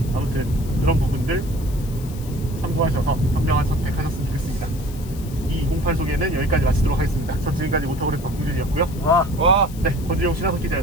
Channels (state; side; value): noise; left; hiss, 18 dB below the sound